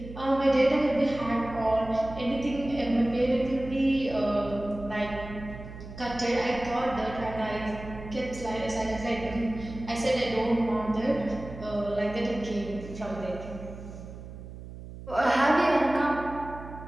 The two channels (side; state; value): right; noise; hum, 13 dB below the sound